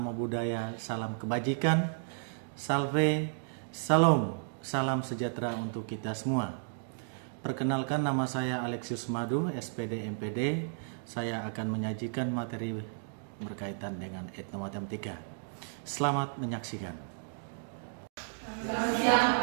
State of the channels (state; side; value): silent; left; digital silence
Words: Buddhaya, salam kebajikan, salve, salam, salam sejahtera untuk kita semua. Perkenalkan, nama saya Alexius Madu, SPD MPD. Saya akan menyajikan materi berkaitan dengan etnomatematika. Selamat menyaksikan. Selamat siang,